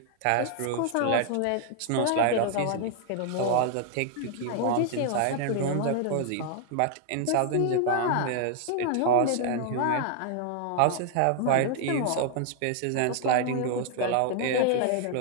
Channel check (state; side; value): different; both; correlation 0.00